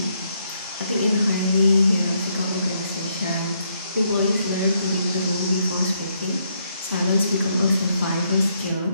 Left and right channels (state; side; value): inverted; both; correlation -0.74